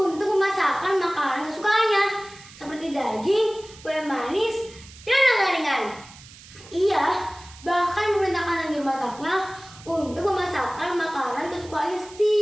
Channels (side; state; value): right; noise; hiss, 20 dB below the sound